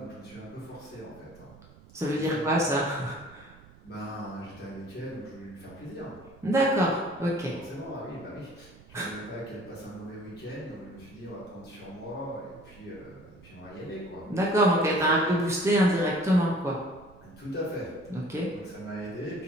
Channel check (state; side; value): noise; right; rumble, 22 dB below the sound